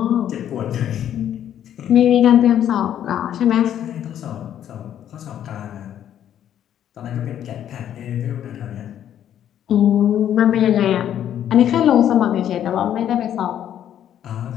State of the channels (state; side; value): quieter; right; 10.4 dB